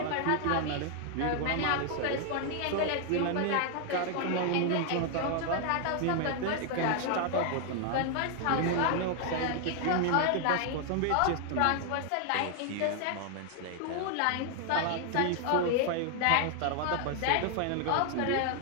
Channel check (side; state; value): both; different; correlation 0.00